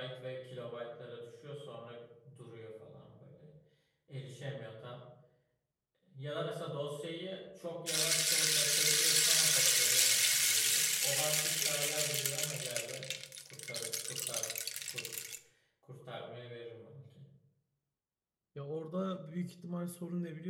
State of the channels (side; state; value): both; identical; correlation 1.00